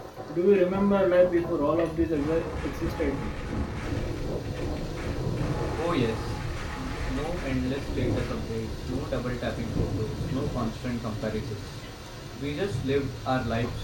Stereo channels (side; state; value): both; identical; correlation 1.00